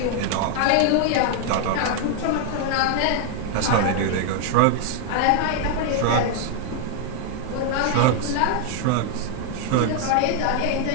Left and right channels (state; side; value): different; both; correlation 0.00